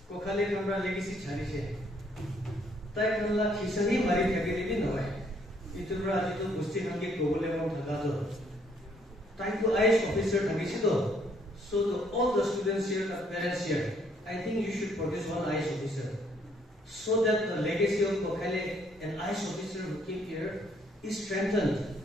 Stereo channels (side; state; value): both; normal; correlation 0.67